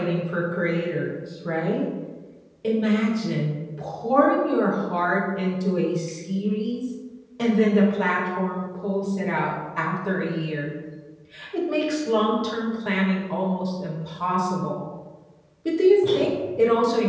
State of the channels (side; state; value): both; identical; correlation 1.00